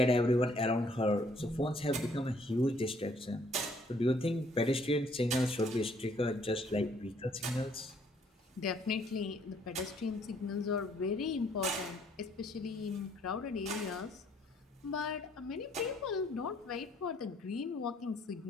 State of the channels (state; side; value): normal; both; correlation 0.64